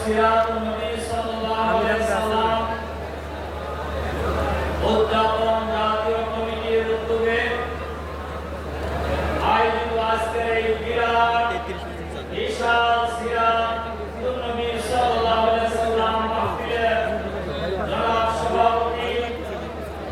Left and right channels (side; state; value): both; identical; correlation 1.00